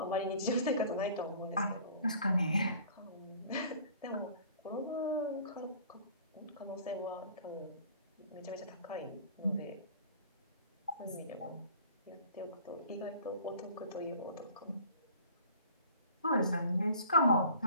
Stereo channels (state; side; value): inverted; both; correlation -0.49